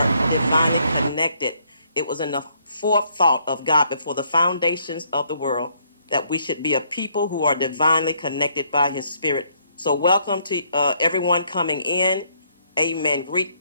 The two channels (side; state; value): both; inverted; correlation -0.69